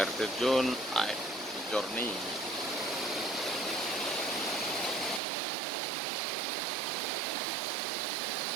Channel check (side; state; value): left; drops out; at 5.2 s